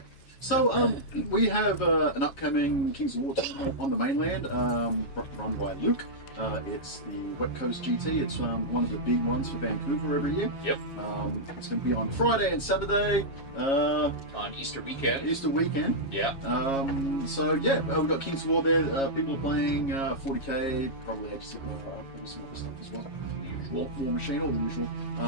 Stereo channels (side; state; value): right; late; 7.3 ms